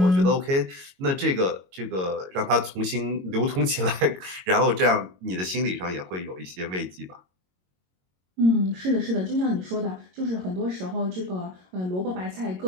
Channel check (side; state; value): left; late; 22 ms